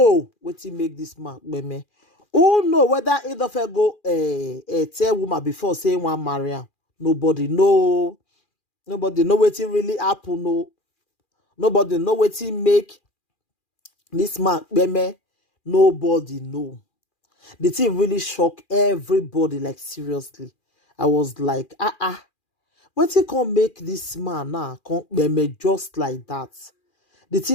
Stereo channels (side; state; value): right; late; 2.4 ms